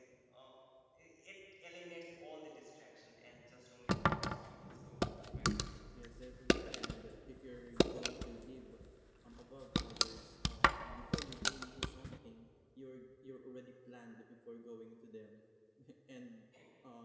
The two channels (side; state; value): both; identical; correlation 1.00